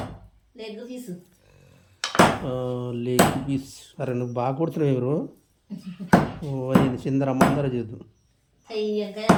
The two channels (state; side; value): identical; both; correlation 1.00